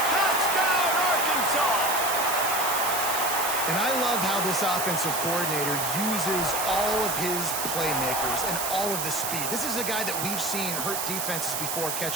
Touchdown, Arkansas! And I love how this offensive coordinator uses all of his playmakers and all of the speed. This is a guy that we've seen hurt defenses before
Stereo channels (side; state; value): right; noise; hiss, 2 dB below the sound